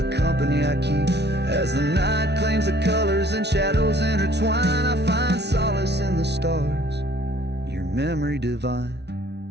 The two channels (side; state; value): left; late; 0.49 ms